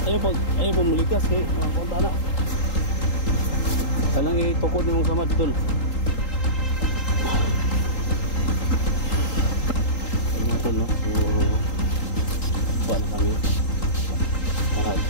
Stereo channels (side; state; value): right; late; 3.8 ms